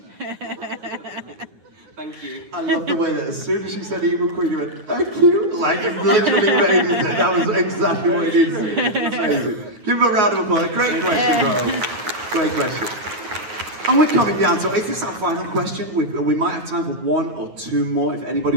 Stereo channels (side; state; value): left; late; 9.2 ms